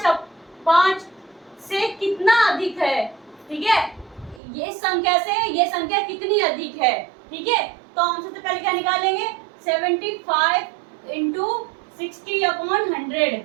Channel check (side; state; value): left; drops out; at 4.4 s